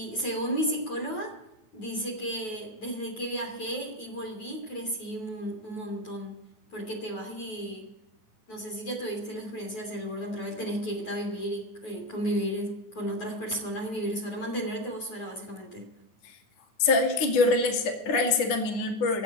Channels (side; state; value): right; late; 10 ms